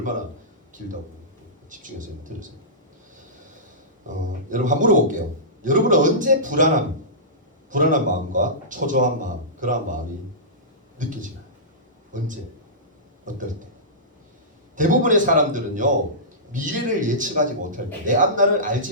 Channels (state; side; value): normal; both; correlation -0.19